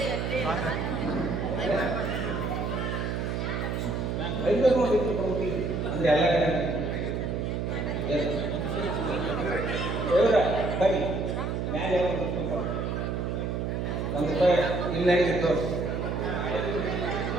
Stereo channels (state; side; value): noise; right; hum, 1 dB below the sound